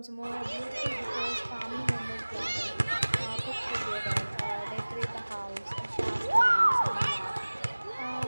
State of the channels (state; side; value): inverted; both; correlation -1.00